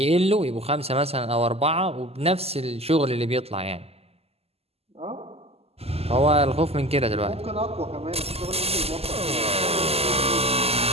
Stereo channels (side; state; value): left; late; 0.29 ms